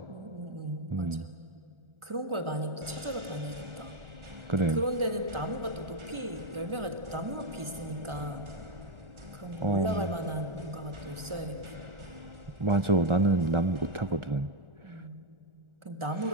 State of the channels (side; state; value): left; late; 1.4 ms